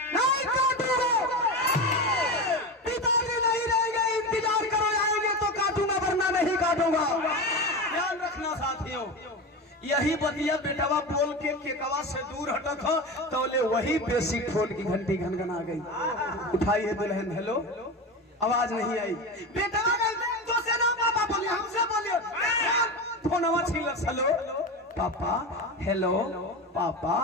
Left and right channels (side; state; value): both; normal; correlation 0.23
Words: नहीं काटूंगा, पिताजी नहीं रहेंगे, इंतजार करो, आएंगे तो काटूंगा वरना नहीं काटूंगा। ध्यान रखना साथियों, यही बतिया बेटवा बोल के केकवा से दूर हटक हो तो ले वही बेसिक फोन की घंटी घनघना गई। उठाइए दुल्हन, हेलो, आवाज नहीं आई, बेटवा तो से ना पापा बोलिए, हमसे बोलिए, फोनवा छीन, हेलो पापा, हेलो पापा